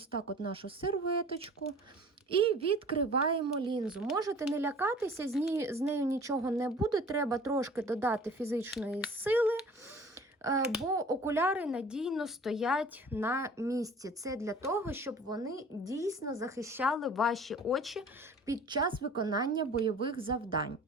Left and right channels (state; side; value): normal; both; correlation 0.46